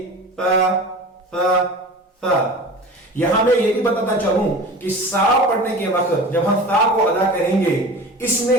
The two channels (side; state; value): both; normal; correlation 0.36